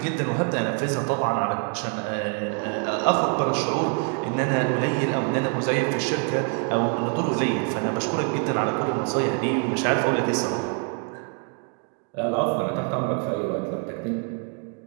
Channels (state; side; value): quieter; left; 39.2 dB